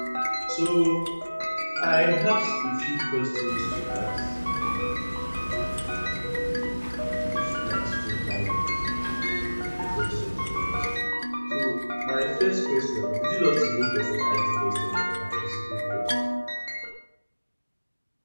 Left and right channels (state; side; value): inverted; both; correlation -1.00